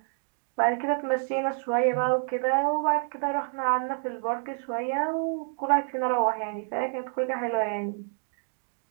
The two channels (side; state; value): left; silent; 59 dB below the other